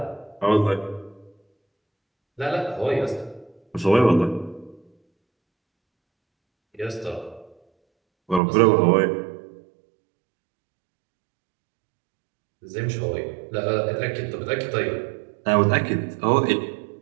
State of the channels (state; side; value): drops out; left; at 8.4 s